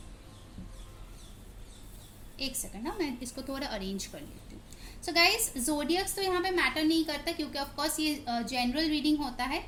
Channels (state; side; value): identical; both; correlation 1.00